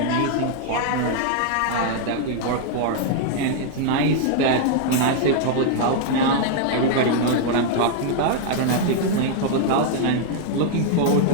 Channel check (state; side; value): different; both; correlation 0.00